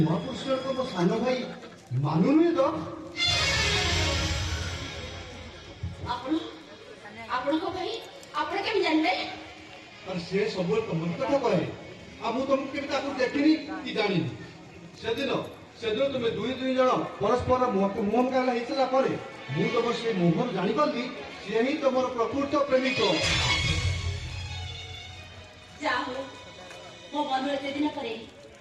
ମହାପୁରୁଷଙ୍କ ମୋ ସାନ ଭାଇ ମାନୁ ନୁହେଁ ତ? ଆପଣଙ୍କ ଭାଇ ଆପଣ କେମିତି ଜାଣିଲେ? ସେ ସବୁବେଳେ ତମ କଥା କହେ ଆଉ ମୁଁ ତମକୁ କେବେ ତାକୁ ଦେଖିନି କି ଜାଣିନି। ସେଦିନ ତୁମେ ଦୁଇ ଜଣ ପରସ୍ପର ମୁହଁ ମୁକାବିଲା ହେଇସାରିଲା ପରେ ମୁଁ ତମ ସେ ମୁହଁରୁ ଜାଣିପାରିଲି ସିଏ ହିଁ ତମର ପ୍ରକୃତ ପ୍ରେମିକ। ଯାହା ହଉ ମୋ ମନୁ ଏତେ ଦିନ ପରେ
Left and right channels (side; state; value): both; identical; correlation 1.00